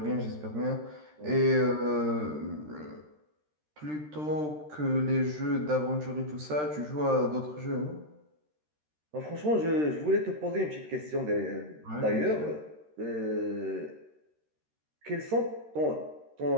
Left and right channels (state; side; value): late; left; 13 ms